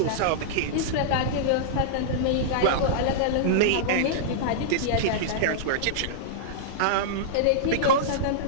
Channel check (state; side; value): different; both; correlation -0.02